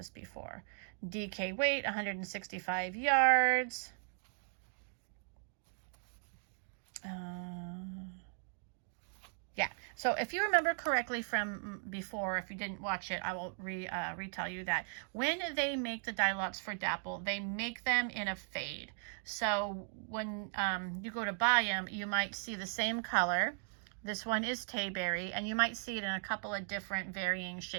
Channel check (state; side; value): silent; left; 53 dB below the other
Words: before. DK weight, 165 yards. Yeah, so if you remember correctly from before, if you didn't watch it, I will retell you that when they make the dye lots for Dapple, they make them in a fade. So when you go to buy them, you might see the same color. This one is Tayberry, and you might see it in a couple of different varying